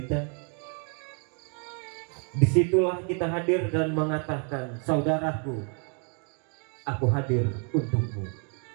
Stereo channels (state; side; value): quieter; left; 39.6 dB